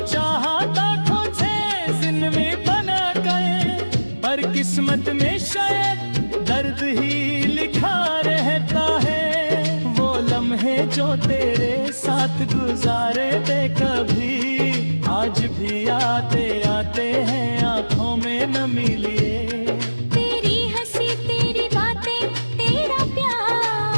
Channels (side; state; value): both; inverted; correlation -1.00